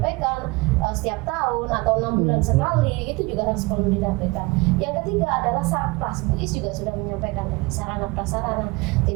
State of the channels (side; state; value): left; quieter; 24.9 dB